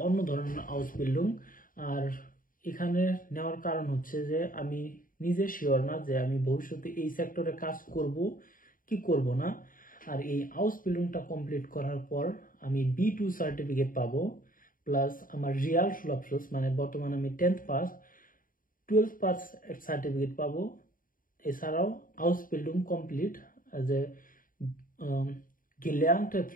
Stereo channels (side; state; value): right; late; 0.40 ms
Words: অন্য ধরনের আউসবিল্ডিং। আর এখানে নেওয়ার কারণ হচ্ছে যে আমি নিজে শিওর না যে আমি ভবিষ্যতে এই সেক্টরে কাজ করব কি করব না। আর এই হাউস বিল্ডিংটা কমপ্লিট করার পর আমি B2 সার্টিফিকেট পাবো, প্লাস আমার রিয়াল সুলভ মানে বর্তমানে আমি 10th pass 12th pass certificate পাবো। এছাড়াও হাউস বিল্ডিং কমপ্লিট অ্যাজ এ গেলার্নte